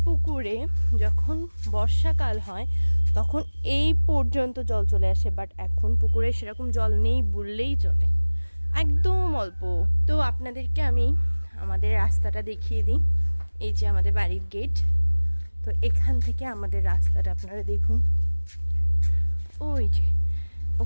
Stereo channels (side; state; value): both; inverted; correlation -1.00